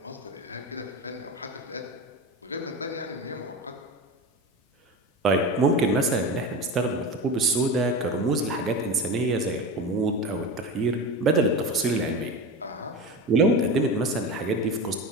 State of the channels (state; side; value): normal; both; correlation 0.25